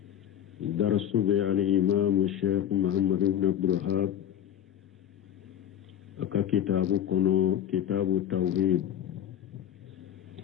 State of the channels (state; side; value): quieter; right; 10.4 dB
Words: درس بي على الإمام الشيخ محمد بن عبد الوهاب أكا كتاب كونو كتاب التوحيد